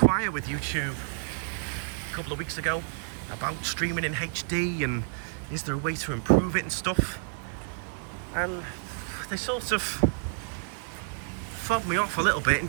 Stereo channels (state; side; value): silent; left; 58 dB below the other